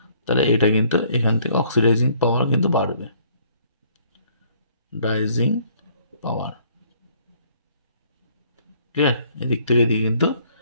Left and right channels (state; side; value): inverted; both; correlation -0.61